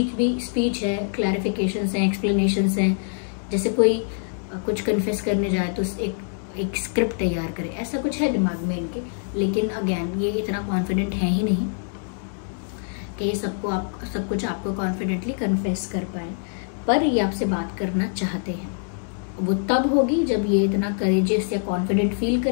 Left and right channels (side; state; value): right; silent; digital silence